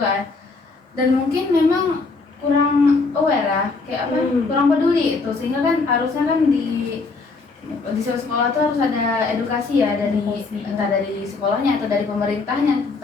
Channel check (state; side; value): quieter; right; 4.0 dB